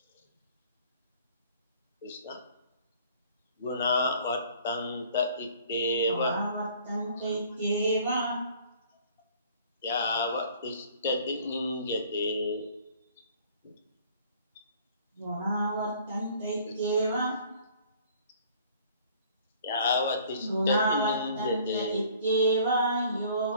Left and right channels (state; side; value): inverted; both; correlation -0.54